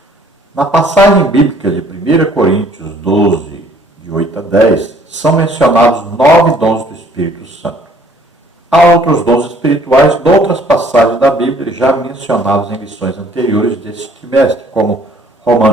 Na passagem bíblica de 1 Coríntios 12, de 8 a 10, são mencionados 9 dons do Espírito Santo. Há outros dons espirituais de outras passagens da Bíblia já mencionados em lições anteriores deste trimestre, como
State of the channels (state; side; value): normal; both; correlation 0.59